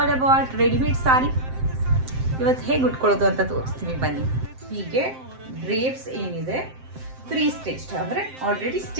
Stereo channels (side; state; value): left; late; 7.7 ms